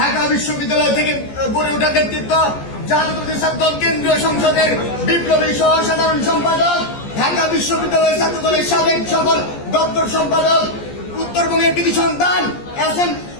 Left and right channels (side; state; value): right; late; 14 ms